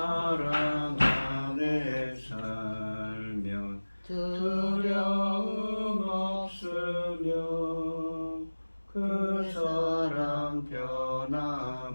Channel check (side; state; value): both; inverted; correlation -1.00